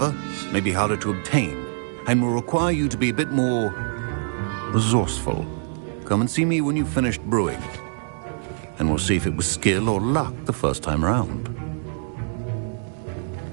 may be harder to obtain, and will require you to be a bit more resourceful. Come and see me when you've finished brewing, and we'll see if it was skill or luck the first time round.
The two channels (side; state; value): left; silent; digital silence